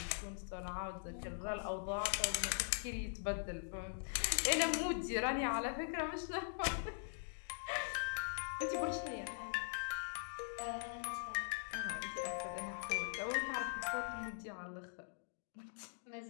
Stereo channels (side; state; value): right; silent; digital silence